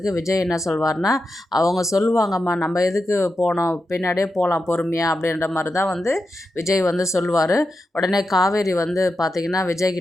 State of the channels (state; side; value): normal; both; correlation 0.89